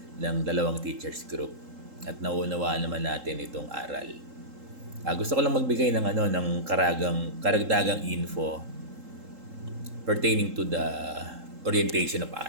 ng dalawang teachers group. At nauunawaan naman natin itong aral. Gusto ko lang magbigay ng karagdagang info pertaining to the orientation of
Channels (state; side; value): late; left; 3.8 ms